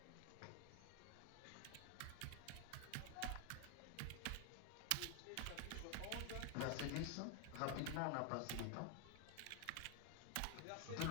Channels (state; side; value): different; both; correlation 0.01